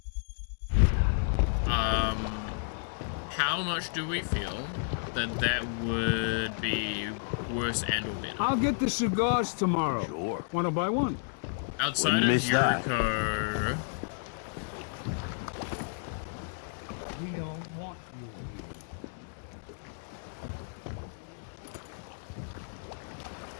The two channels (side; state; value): right; silent; digital silence